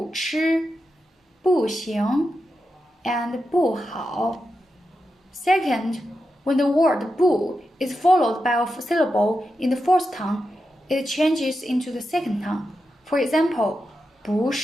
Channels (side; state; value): both; normal; correlation 0.88